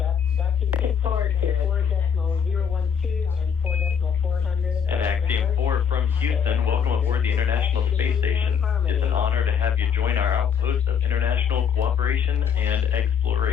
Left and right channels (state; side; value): quieter; right; 7.3 dB